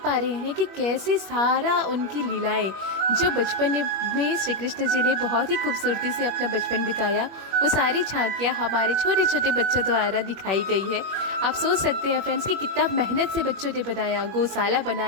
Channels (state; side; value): late; left; 21 ms